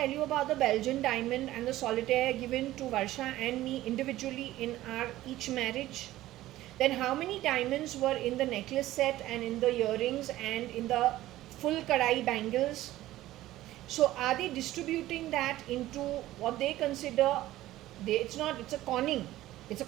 you about the Belgian diamond and the solitaire given to Varsha and me individually in our each marriage? Then how many diamonds were in the necklace set and in the earrings and in the full kadai bangles? So are they distributing that into what they consider, it's a conning. It's a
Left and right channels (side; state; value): left; quieter; 15.4 dB